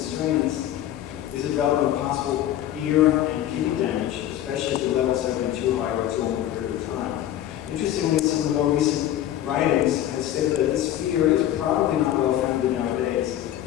strains, is the development of possible ear and kidney damage, especially if the levels have been too high or too long a period of time. Interestingly, some of the more recent writings have stated that this fear is probably not well founded nowadays.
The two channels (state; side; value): quieter; right; 12.2 dB